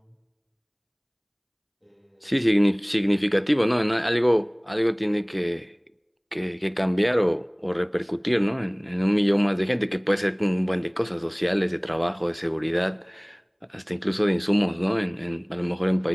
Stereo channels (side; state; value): both; identical; correlation 1.00